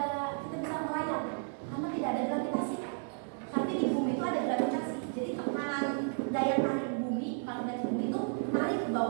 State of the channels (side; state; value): left; silent; 56 dB below the other